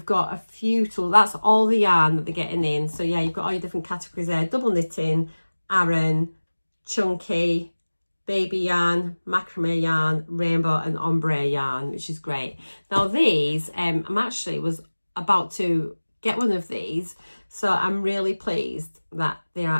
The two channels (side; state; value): both; inverted; correlation -1.00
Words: got a few tools. That's all the yarn that they're getting in. So yeah, you've got all your different categories there. Double knitting, Aran, chunky, baby yarn, macrame yarn, rainbow and ombre yarn, which is great. Now these, I'm actually was about to get one of these. So I'm really pleased that they're